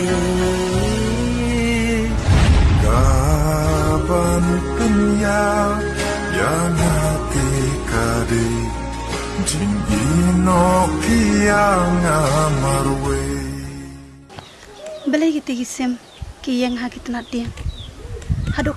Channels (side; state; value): both; identical; correlation 1.00